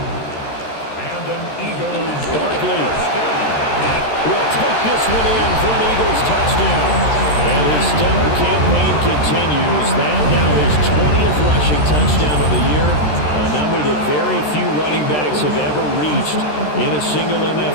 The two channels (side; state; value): right; late; 13 ms